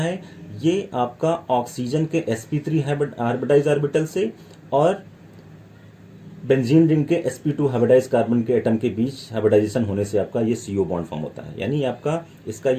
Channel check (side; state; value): both; identical; correlation 1.00